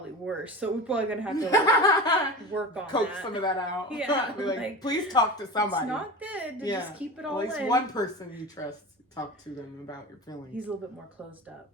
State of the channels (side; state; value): both; normal; correlation 0.31